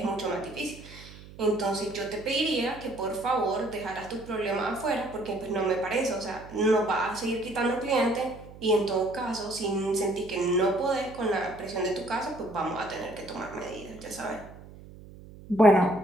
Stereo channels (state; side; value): noise; right; hum, 18 dB below the sound